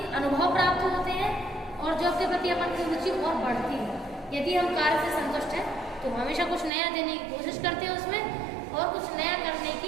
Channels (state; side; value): drops out; left; at 6.7 s